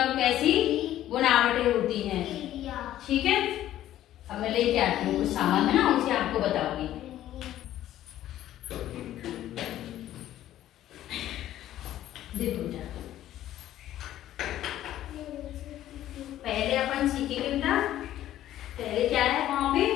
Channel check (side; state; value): right; quieter; 12.9 dB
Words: और कैसी बनावटें होती हैं। ठीक है, अब मैं लेके आती हूँ कुछ सामान, है ना, उनसे आपको बताऊंगी। देखो बेटा, पहले अपन सीखेंगे बेटा, पहले क्या है वहां पे